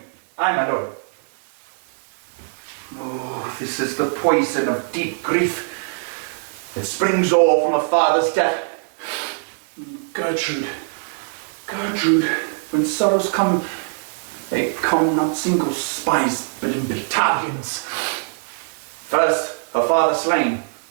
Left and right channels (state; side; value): silent; left; digital silence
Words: Aye, my lord. Oh, this is the poison of deep grief. It springs all from a father's death. Gertrude, Gertrude, when sorrows come, they come not single spies, but in battalions. First, her father slain.